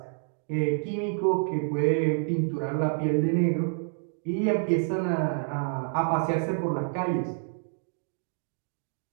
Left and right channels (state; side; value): silent; left; 59 dB below the other